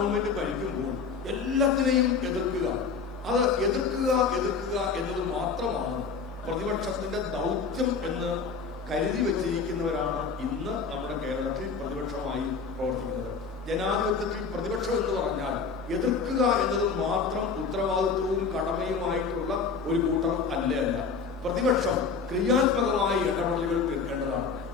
ഭരിക്കുമ്പോൾ എല്ലാത്തിനെയും എതിർക്കുക, അത് എതിർക്കുക എന്നത് മാത്രമാണ് പ്രതിപക്ഷത്തിന്റെ ദൗത്യം എന്ന് കരുതി വെച്ചിരിക്കുന്നവരാണ് ഇന്ന് നമ്മുടെ കേരളത്തിൽ പ്രതിപക്ഷമായി പ്രവർത്തിക്കുന്നത്. ജനാധിപത്യത്തിൽ പ്രതിപക്ഷം എന്ന് പറഞ്ഞാൽ എതിർക്കുക എന്നത് മാത്രം ഉത്തരവാദിത്വവും കടമയുമായിട്ടുള്ള ഒരു കൂട്ടർ അല്ല. പ്രതിപക്ഷം ക്രിയാത്മകമായ ഇടപെടലുകൾ തീർക്കേണ്ടതാണ്.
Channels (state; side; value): quieter; right; 5.3 dB